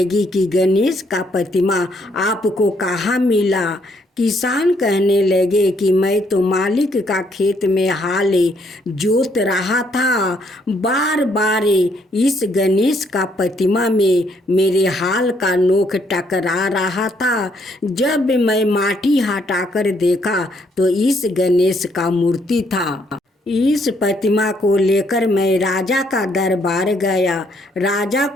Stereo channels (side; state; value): both; normal; correlation 0.70